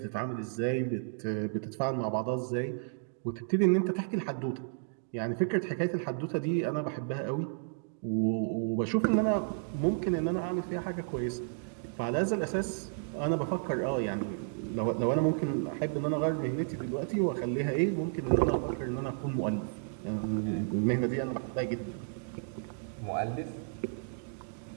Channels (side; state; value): left; silent; digital silence